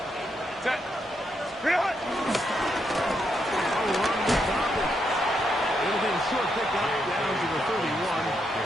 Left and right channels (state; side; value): normal; both; correlation 0.80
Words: Set. Real. Run with Dobbins. It'll be a short pickup down to the 31.